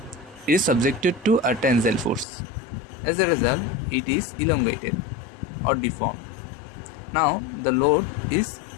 It is subjected to a tensile force. As a result, it is elongated or deformed. Now the load is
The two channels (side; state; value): right; drops out; at 2.2 s